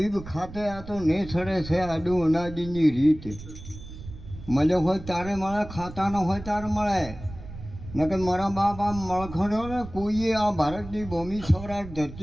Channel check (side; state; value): right; noise; rumble, 14 dB below the sound